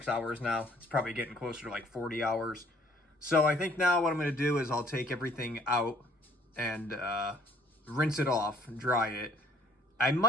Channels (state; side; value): normal; both; correlation 0.60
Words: hours now. It's probably getting closer to like 40 hours. So I think now what I'm going to do is I'll take everything out and rinse it off, dry it. I